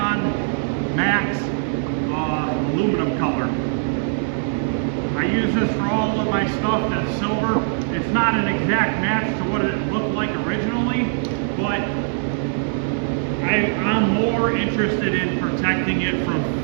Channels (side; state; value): left; silent; 64 dB below the other